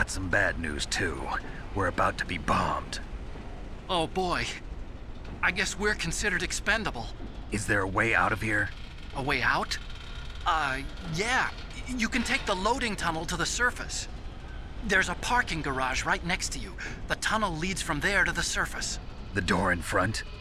some bad news, too. We're about to be bombed. Oh, boy. I guess we're considered expendable. Is there a way out of here? A way out? Yeah. You can take the loading tunnel to the surface. There's a parking garage right next to you. The tunnel leads from there to the surface. The door in front?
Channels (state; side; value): identical; both; correlation 1.00